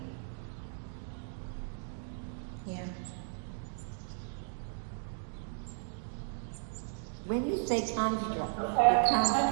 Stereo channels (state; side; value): silent; left; digital silence